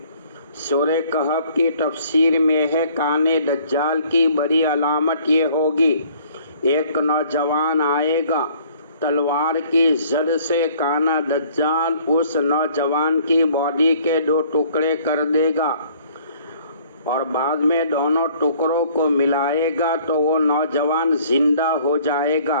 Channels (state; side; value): inverted; both; correlation -0.57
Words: سورہ کہف کی تفسیر میں ہے کانے دجال کی بڑی علامت یہ ہوگی، ایک نوجوان آئے گا، تلوار کی زد سے کانا دجال اس نوجوان کی باڈی کے 2 ٹکڑے کر دے گا اور بعد میں دونوں ٹکڑوں کو ملائے گا تو وہ نوجوان زندہ ہو جائے گا۔